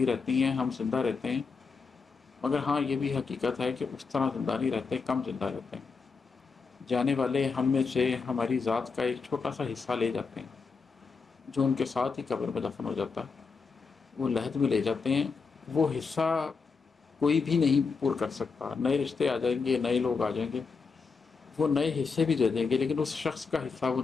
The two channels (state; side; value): quieter; right; 4.9 dB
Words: رہتی ہیں، ہم زندہ رہتے ہیں، مگر ہاں یہ بھی حقیقت ہے کہ اس طرح زندہ نہیں رہتے، کم زندہ رہتے ہیں۔ جانے والے ہم میں سے ہماری ذات کا ایک چھوٹا سا حصہ لے جاتے ہیں، جو ان کے ساتھ ہی قبر میں دفن ہو جاتا ہے، وہ لحد میں لے جاتے ہیں۔ وہ حصہ کوئی بھی نہیں پور کر سکتا، نئے رشتے آ جائیں گے، نئے لوگ آ جائیں گے، وہ نئے حصے بھی دے دیں گے، لیکن اس شخص کا حصہ وہ